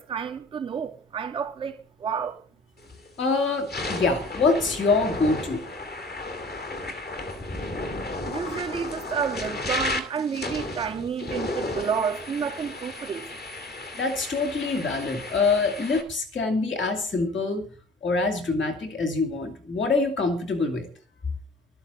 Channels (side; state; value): both; normal; correlation 0.45